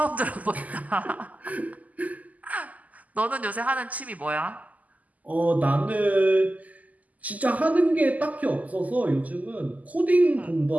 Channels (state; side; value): late; left; 0.077 ms